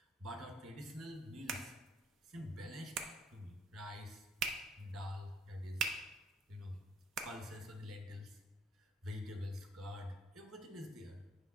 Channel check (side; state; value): both; normal; correlation 0.60